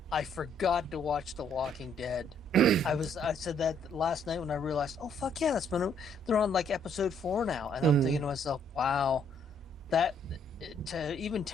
I forgot to watch The Walking Dead. I said that last night when I realized, oh fuck yeah, they're on like episode 4 now, and I'm thinking to myself, wow, even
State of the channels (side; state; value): both; normal; correlation 0.67